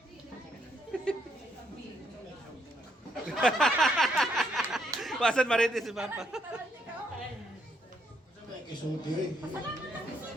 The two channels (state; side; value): normal; both; correlation 0.74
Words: Pasan marites si Papa.